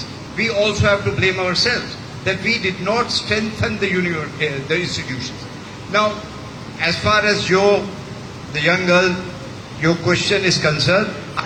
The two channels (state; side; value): identical; both; correlation 1.00